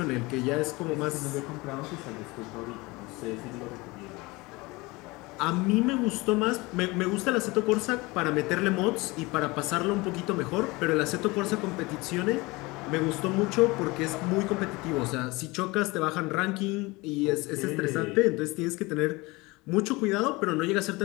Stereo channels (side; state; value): right; quieter; 23.3 dB